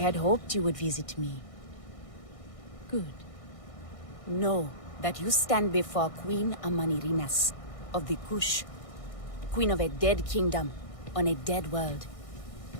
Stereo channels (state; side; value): late; right; 1.6 ms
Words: hoped you would visit me. Good. Know that you stand before Queen Amanirinas of the Kush, queen of a dead kingdom on a dead world.